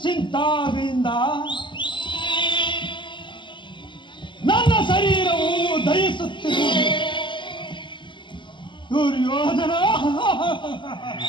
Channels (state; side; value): late; right; 0.23 ms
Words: ನನ್ನ ಶರೀರವು ದಯಿಸುತ್ತಿರುವುದು. ದುರ್ಯೋಧನ,